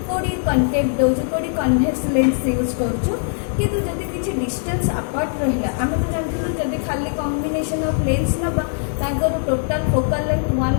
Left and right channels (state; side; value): silent; right; 65 dB below the other